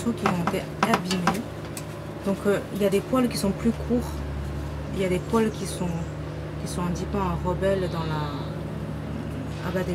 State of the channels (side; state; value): both; identical; correlation 1.00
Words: qui ont été abîmés. Donc il y a des poils qui sont plus courts, il y a des poils qui sont un petit peu en rebelle dans la... Ah bah